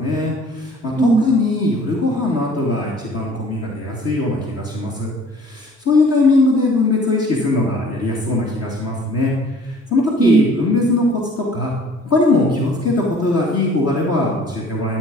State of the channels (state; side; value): normal; both; correlation 0.52